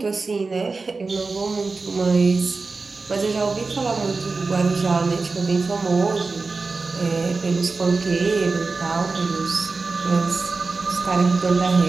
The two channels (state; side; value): quieter; left; 4.0 dB